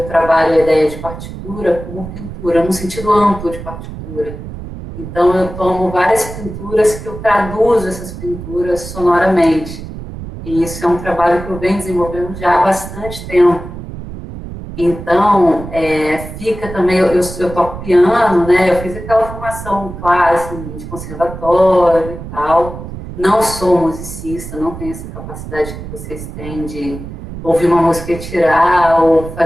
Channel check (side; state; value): right; noise; rumble, 11 dB below the sound